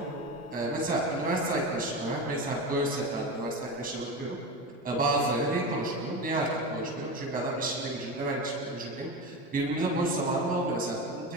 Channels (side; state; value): both; normal; correlation 0.23